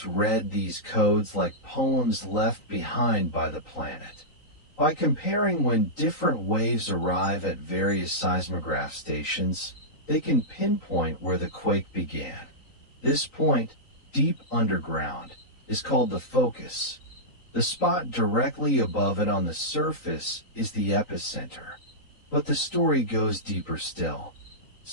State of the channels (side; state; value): right; late; 3.9 ms